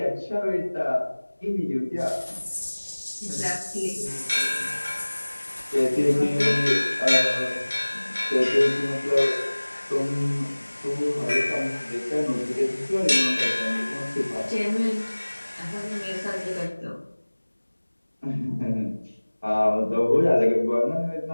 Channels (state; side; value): inverted; both; correlation -1.00